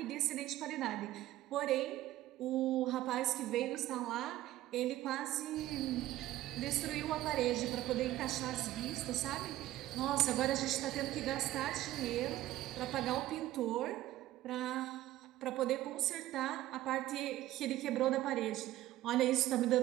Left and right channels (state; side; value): quieter; left; 15.0 dB